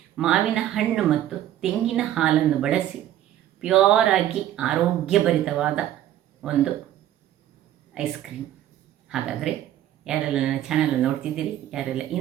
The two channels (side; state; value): left; quieter; 12.3 dB